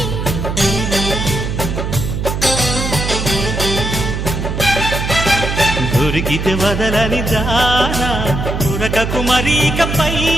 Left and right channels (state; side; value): noise; right; hum, 3 dB below the sound